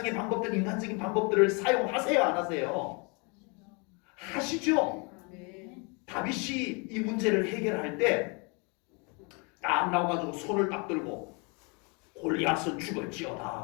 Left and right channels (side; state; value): right; quieter; 32.3 dB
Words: 방법들, 인간적인 방법들을 사용하세요, 안 하세요? 하시죠. 다윗이 이 문제를 해결할 때 딱 나와가지고 손을 딱 들고 골리앗은